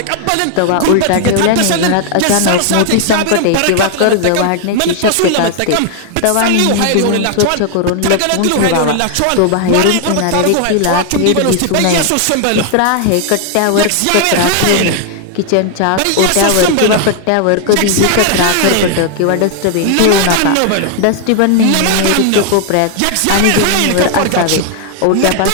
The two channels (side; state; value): both; different; correlation 0.00